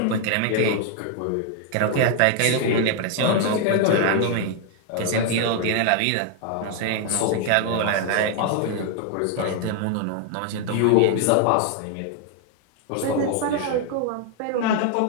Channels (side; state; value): both; different; correlation 0.00